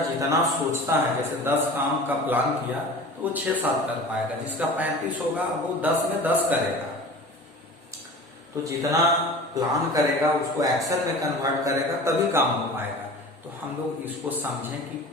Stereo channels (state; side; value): normal; both; correlation 0.38